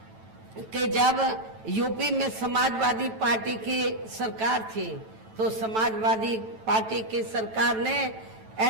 कि जब यूपी में समाजवादी पार्टी की सरकार थी तो समाजवादी पार्टी की सरकार ने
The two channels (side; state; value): left; late; 9.1 ms